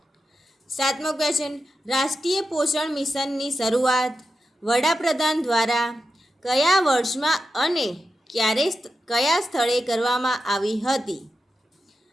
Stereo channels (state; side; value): normal; both; correlation 0.90